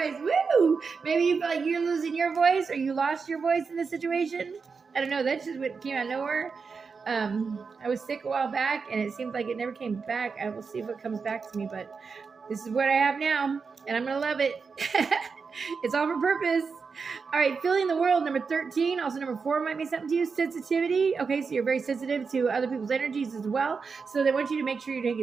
Woo! Maybe you feel like you're losing your voice or you lost your voice in this situation. I don't know. That's just what came out of nowhere. I was sick a while back and it seems like it never came back. I will see if it comes back to me, but this is what I have now and I'm going to love it. It's all for purpose. All right, feeling the world, number 13. Also, number 4 might mean something to you. Sensitivity. Okay, so you're very sensitive to other people's energies as well. So they want you to make sure you're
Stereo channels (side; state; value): left; quieter; 5.2 dB